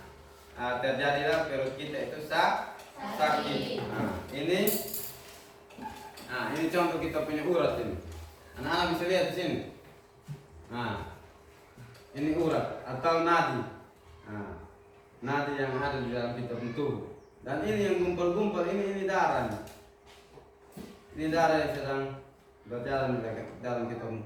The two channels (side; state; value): both; identical; correlation 1.00